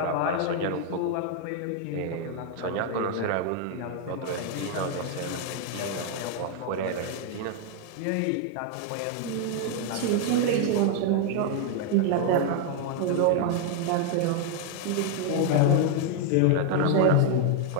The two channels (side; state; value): both; different; correlation 0.00